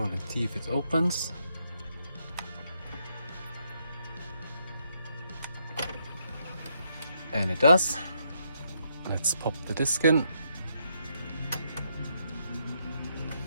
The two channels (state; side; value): inverted; both; correlation -0.76